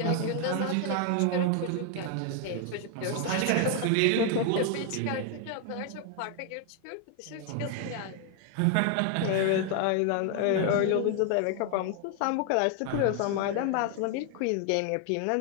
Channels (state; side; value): different; both; correlation 0.00